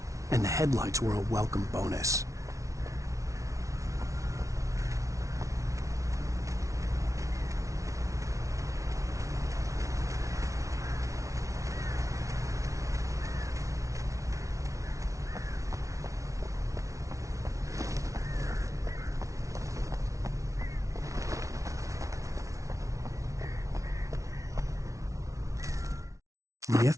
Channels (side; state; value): left; late; 0.15 ms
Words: and the headlights were a welcome bonus. The